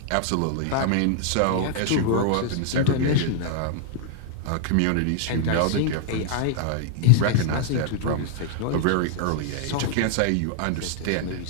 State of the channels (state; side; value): different; both; correlation -0.01